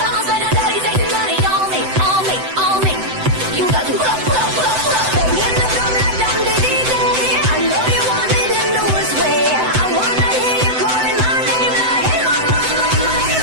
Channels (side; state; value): left; late; 7.9 ms